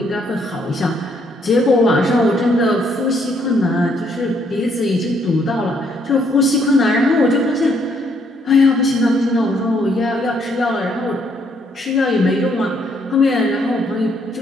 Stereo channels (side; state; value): both; normal; correlation 0.70